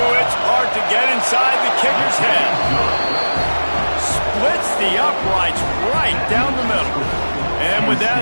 its part to get inside the kicker's head. Splits the uprights right down the middle. And with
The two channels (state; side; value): inverted; both; correlation -1.00